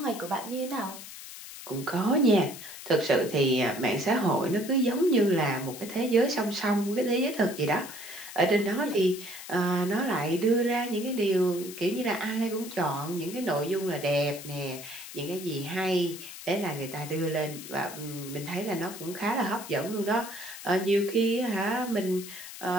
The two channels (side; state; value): left; noise; hiss, 13 dB below the sound